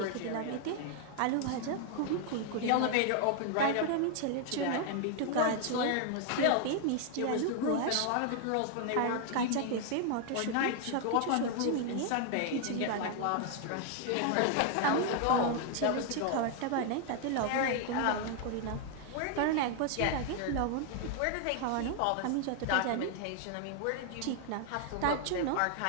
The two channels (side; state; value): both; different; correlation 0.00